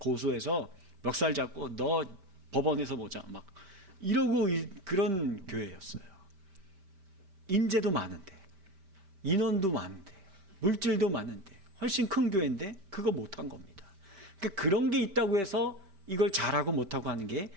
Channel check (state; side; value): late; left; 5.1 ms